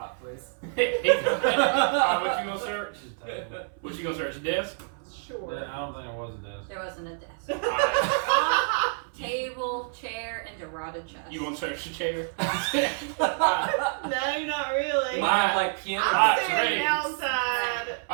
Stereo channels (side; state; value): left; silent; 60 dB below the other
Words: please. Alright, what you gonna search? Just take it. What you gonna search? Desk? Sure. Yeah, I don't think there was a desk. There wasn't a desk. Alright. Cot, table, chair, and a rotted chest. You wanna search the chair? No, not really. You might have like piano. I'm Alright, standing ready. outside.